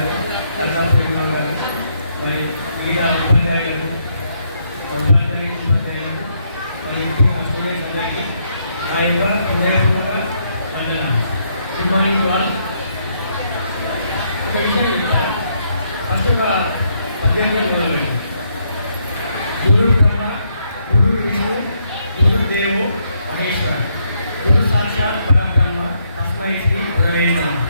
కర్ణాటకలో గారు మరి మిగతా ఉపాధ్యాయులకు మరి స్టూడెంట్స్ అందరికీ నా యొక్క హృదయపూర్వక వందనాలు. గుడ్ మార్నింగ్ వాళ్ళు. ఒక విషయం చెప్తా. ఫస్ట్ ఒక పద్యంగా మొదలుపెట్టి గురు బ్రహ్మ గురు విష్ణు గురు దేవో మహేశ్వర గురు సాక్షాత్ పరబ్రహ్మ తస్మై శ్రీ గురవే నమః.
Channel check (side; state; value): both; inverted; correlation -0.75